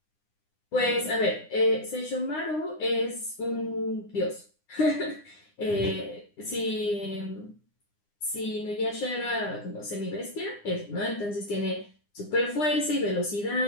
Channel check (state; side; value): late; right; 9.8 ms